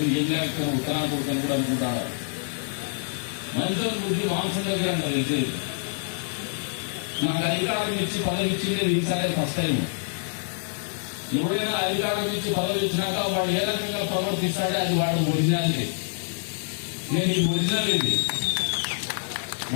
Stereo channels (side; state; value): right; silent; 56 dB below the other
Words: ఏం లేకపోతే ఉత్తరాలు కొడుకొని కూడా అనుకుంటాడు. మనుషుల బుద్ధి మాంసం దగ్గర తెలిసి నాకు అధికారం ఇచ్చి పదవి ఇచ్చింది ఈసారి ఫస్ట్ టైం. ఎవరైనా అధికారం ఇచ్చి పదవి ఇచ్చినాక వాడు ఏ రకంగా ప్రవర్తిస్తాడే అది వాడు ఒరిజినాలిటీ. నేను ఈ ఒరిజినల్ ఇది